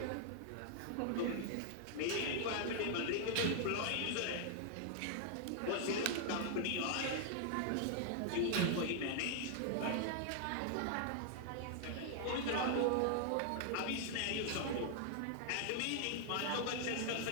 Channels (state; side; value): different; both; correlation 0.00